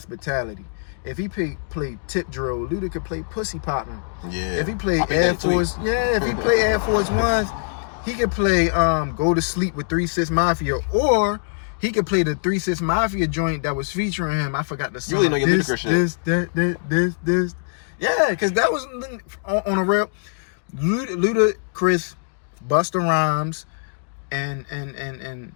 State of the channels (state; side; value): silent; right; digital silence